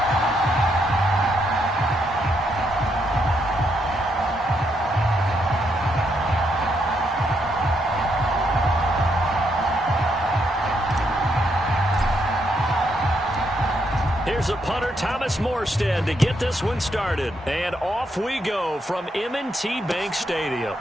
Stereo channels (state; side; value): normal; both; correlation 0.77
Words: Here's a punter, Thomas Morstead, to get this one started. And off we go from M&T Bank Stadium.